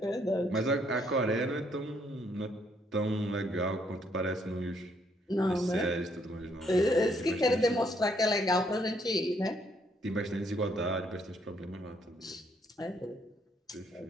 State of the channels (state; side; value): normal; both; correlation 0.70